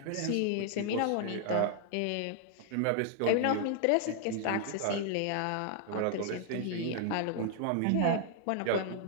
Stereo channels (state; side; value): different; both; correlation 0.00